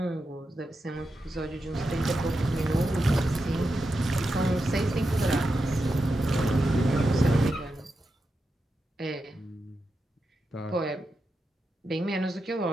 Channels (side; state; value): both; normal; correlation 0.88